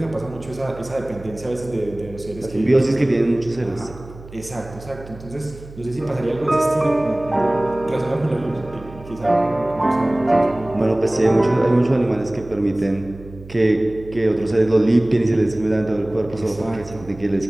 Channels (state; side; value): noise; right; hum, 17 dB below the sound